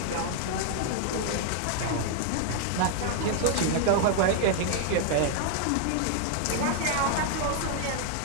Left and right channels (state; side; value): different; both; correlation 0.00